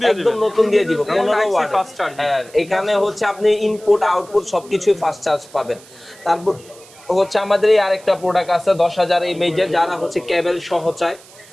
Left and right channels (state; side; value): noise; right; hiss, 23 dB below the sound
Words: দিয়ে দিবেন, একদম নতুন দিয়ে দিব। 15 ওয়াট ফাস্ট চার্জ। হ্যাঁ, এখানে হচ্ছে আপনি ইনপুট আউটপুট সবকিছুই ফাস্ট চার্জ পাবেন। তারপর হচ্ছে আমাদের এই আরেকটা প্রোডাক্ট আছে 10000 mAh, যারা হচ্ছে কেবল সহ চায়।